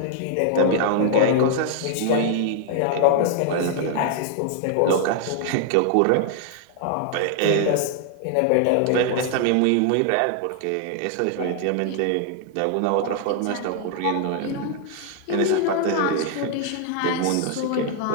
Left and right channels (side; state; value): both; different; correlation 0.00